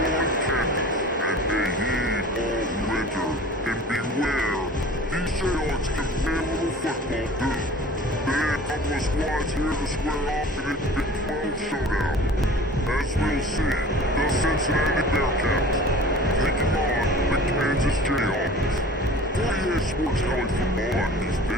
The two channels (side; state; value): both; normal; correlation 0.42